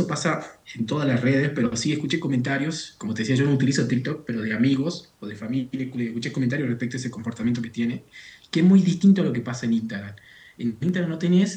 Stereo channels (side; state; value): both; identical; correlation 1.00